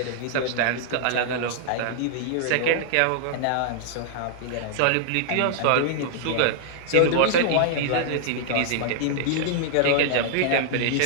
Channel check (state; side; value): different; both; correlation -0.01